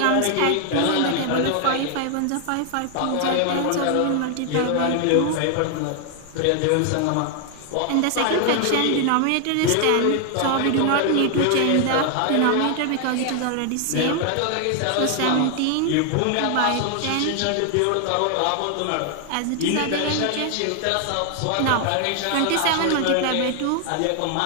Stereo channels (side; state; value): both; different; correlation 0.00